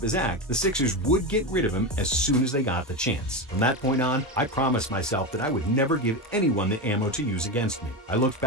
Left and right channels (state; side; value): normal; both; correlation 0.17